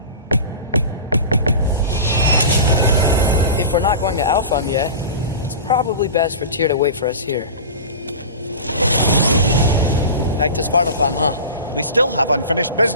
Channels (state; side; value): inverted; both; correlation -0.32